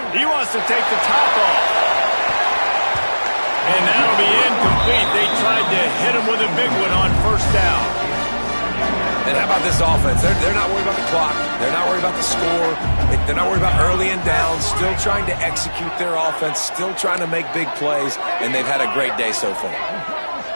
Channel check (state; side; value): inverted; both; correlation -1.00